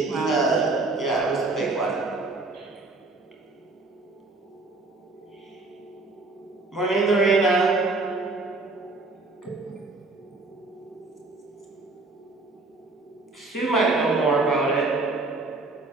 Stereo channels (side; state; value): left; quieter; 3.3 dB